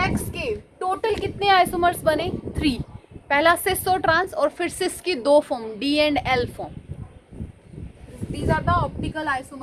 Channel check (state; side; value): identical; both; correlation 1.00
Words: के टोटल कितने आइसोमर्स बने, 3। पहला सिस और ट्रांस, और फिर सिस की 2 form, D and L form. These are the optical